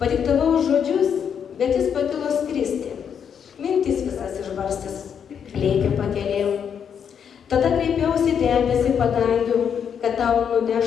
žodžius, bet jis pakilo skristi. Mintis visas išbarstęs, lėkė pakelėm. Tada kreipiausi debesį padangių, kad tau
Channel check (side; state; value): right; quieter; 7.7 dB